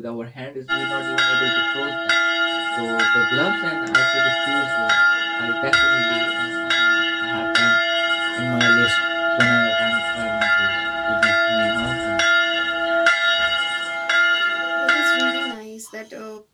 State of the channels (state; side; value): identical; both; correlation 1.00